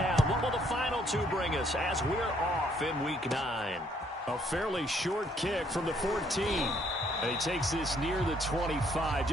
What will the final two bring us as we're off in Week 9? A fairly short kick from the 14. And he takes this near the 25.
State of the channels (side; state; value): both; normal; correlation 0.67